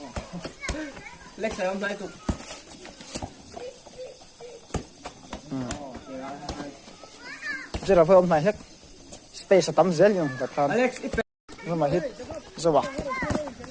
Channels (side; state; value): both; identical; correlation 1.00